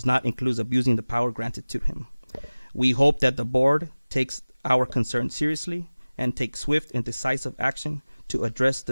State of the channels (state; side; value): inverted; both; correlation -1.00